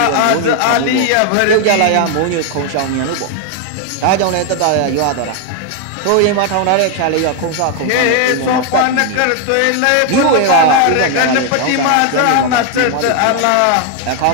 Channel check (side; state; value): both; different; correlation 0.01